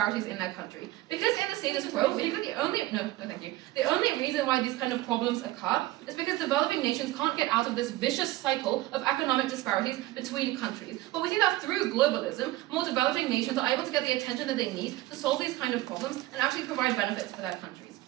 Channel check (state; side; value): quieter; left; 17.3 dB